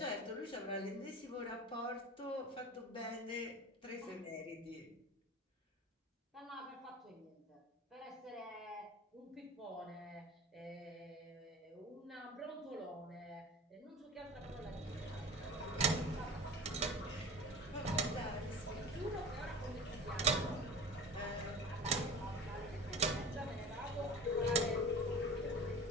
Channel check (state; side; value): normal; both; correlation 0.36